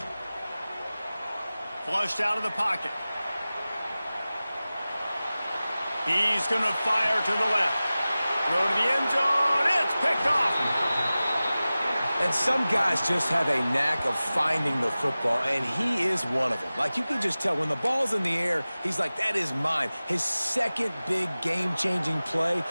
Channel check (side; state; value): both; inverted; correlation -0.97